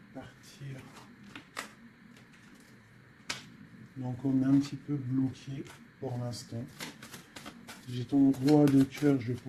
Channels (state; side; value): identical; both; correlation 1.00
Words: Partir. Donc, on est un petit peu bloqué pour l'instant. J'ai ton roi de cœur, je